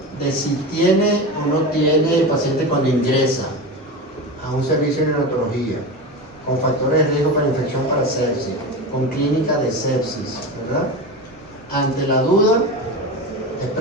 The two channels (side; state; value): both; normal; correlation 0.24